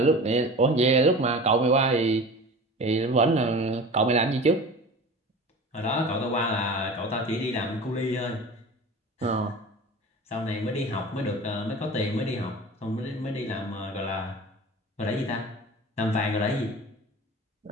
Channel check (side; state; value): both; normal; correlation 0.37